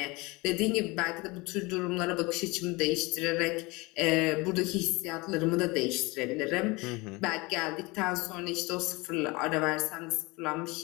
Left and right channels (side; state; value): right; quieter; 24.5 dB